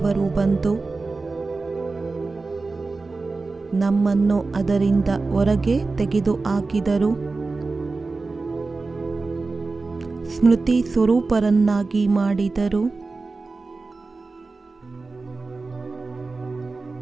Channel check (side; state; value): left; quieter; 3.8 dB